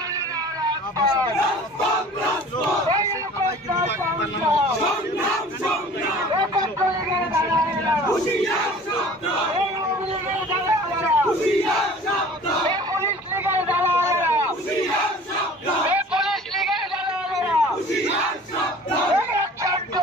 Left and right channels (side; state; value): both; normal; correlation 0.45